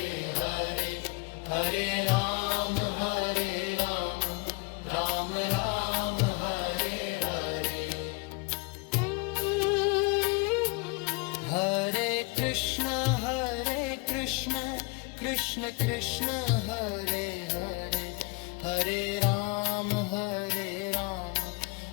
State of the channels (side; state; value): right; quieter; 28.0 dB